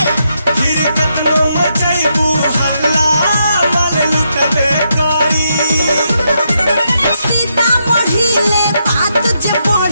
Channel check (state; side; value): inverted; both; correlation -0.80